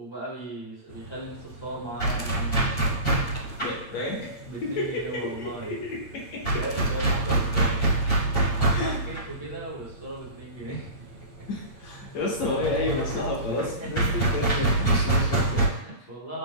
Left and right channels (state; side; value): late; right; 8.7 ms